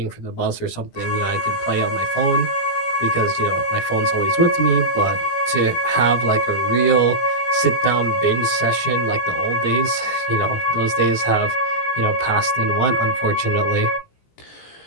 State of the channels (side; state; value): right; late; 17 ms